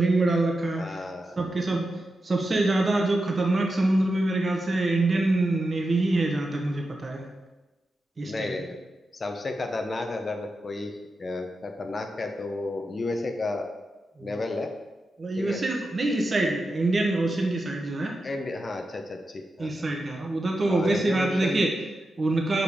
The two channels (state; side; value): normal; both; correlation 0.89